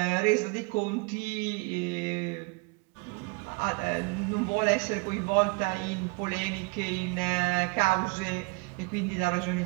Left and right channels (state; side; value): quieter; left; 29.9 dB